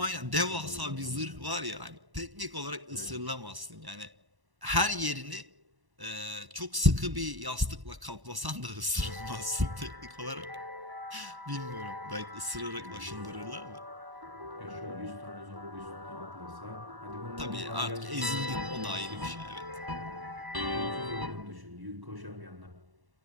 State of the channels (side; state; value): left; late; 1.1 ms